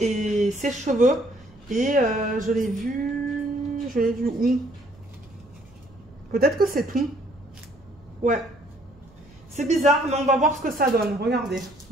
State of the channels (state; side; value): noise; right; rumble, 26 dB below the sound